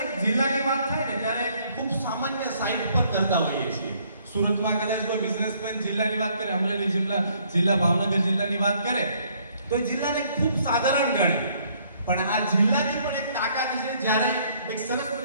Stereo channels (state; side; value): inverted; both; correlation -0.65